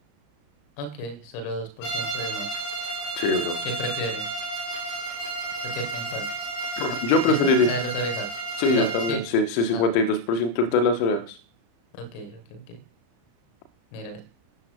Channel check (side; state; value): right; late; 35 ms